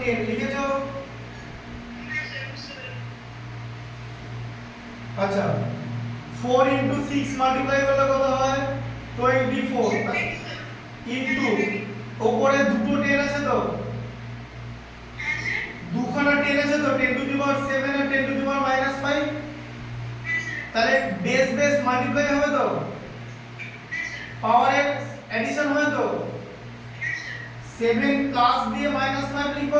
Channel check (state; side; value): identical; both; correlation 1.00